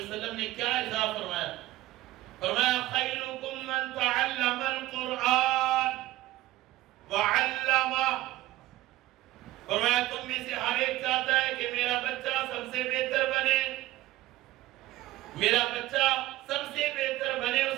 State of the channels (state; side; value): quieter; left; 16.6 dB